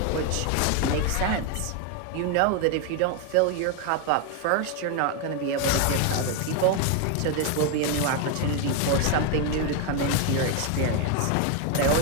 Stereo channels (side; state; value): both; different; correlation 0.01